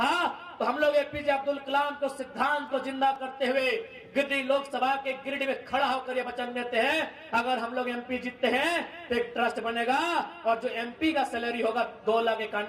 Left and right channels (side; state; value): both; identical; correlation 1.00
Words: तो हम लोग एपीजे अब्दुल कलाम को सिद्धांत को जिंदा करते हुए गिरिडीह लोकसभा के गिरिडीह में खड़ा होकर ये वचन देते हैं, अगर हम लोग एमपी जीतते हैं तो एक ट्रस्ट बनेगा और जो एमपी का सैलरी होगा